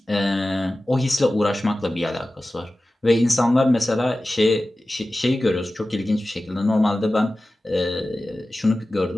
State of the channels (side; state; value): both; normal; correlation 0.95